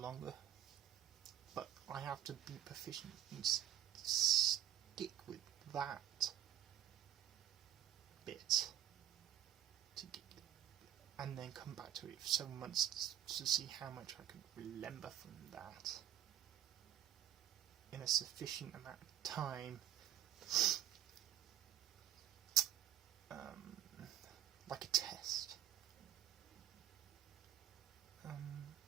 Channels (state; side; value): quieter; left; 11.6 dB